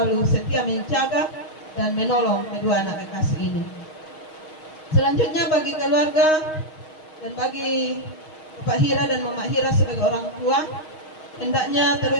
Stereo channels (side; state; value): right; late; 6.4 ms